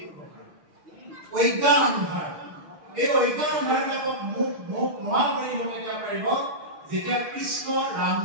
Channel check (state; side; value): late; left; 6.7 ms